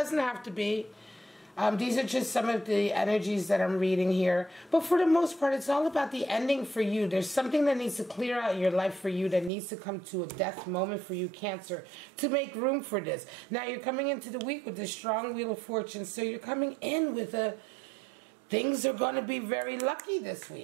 have to be. These are just some of the energies that I'm reading here. But for the most part, it's all about the ending for you. There's something that needs to clear out in your life for you, that needs to come to a death moment for you, Cancer, to make room for this. Now, you're coming into the week with this strong Wheel of Fortune. So you're coming in with things are going to be very lucky this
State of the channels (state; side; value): drops out; left; at 9.5 s